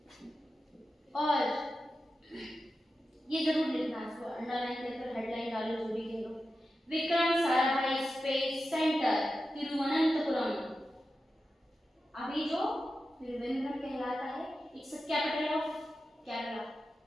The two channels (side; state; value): both; normal; correlation 0.92